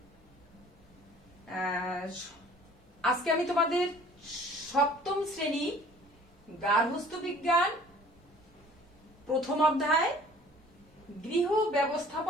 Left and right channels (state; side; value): normal; both; correlation 0.51